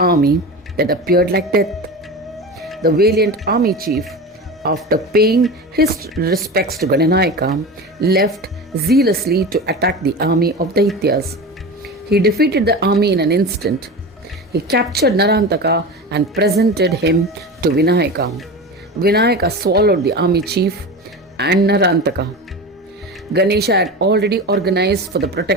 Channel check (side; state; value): both; normal; correlation 0.28